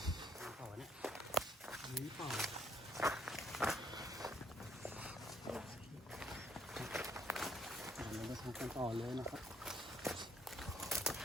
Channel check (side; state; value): both; normal; correlation 0.67